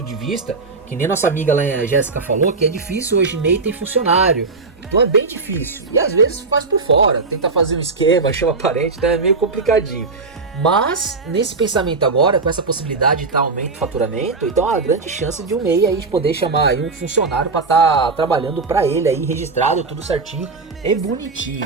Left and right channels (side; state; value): left; quieter; 4.1 dB